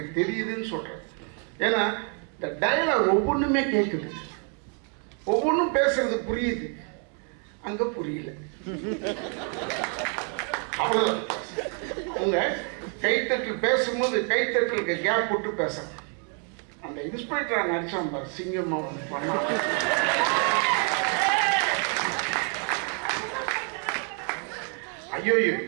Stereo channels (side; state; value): left; quieter; 39.9 dB